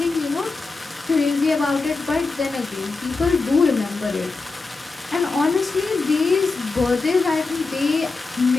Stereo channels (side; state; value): right; quieter; 3.9 dB